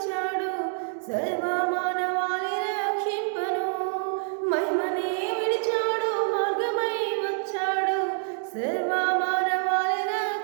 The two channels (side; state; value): left; silent; 58 dB below the other